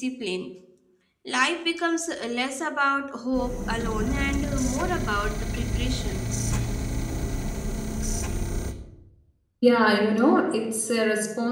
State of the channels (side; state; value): both; identical; correlation 1.00